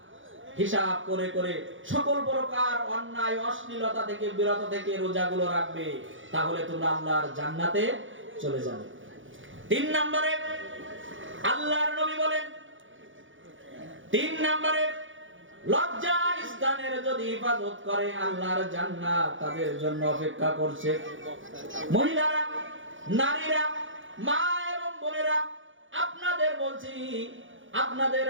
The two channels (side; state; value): left; late; 0.56 ms